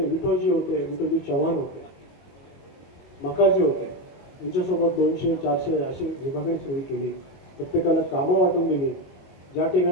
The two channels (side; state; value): right; late; 22 ms